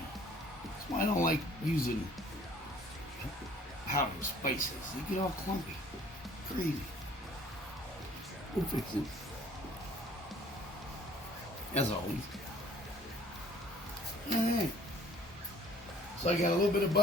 why I don't like using powdered spices. They get all clumpy. Crazy. We'll fix it. As always. Alright. So I got a little bit of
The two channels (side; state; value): both; normal; correlation 0.55